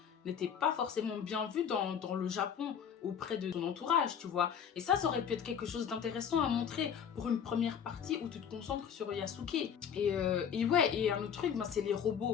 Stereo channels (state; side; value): quieter; right; 7.9 dB